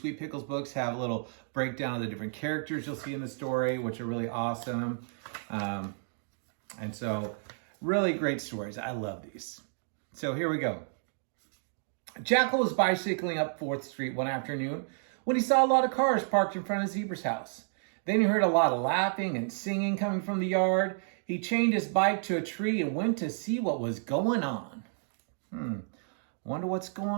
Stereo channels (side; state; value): left; silent; digital silence